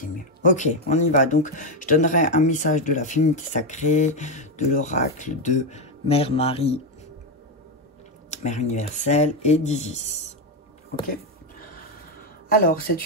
mieux. Ok, on y va. Donc, je donnerai un message de la féminité sacrée, de l'oracle de Mère Marie, Mère universelle et d'Isis. Ok. Alors,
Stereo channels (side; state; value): both; normal; correlation 0.07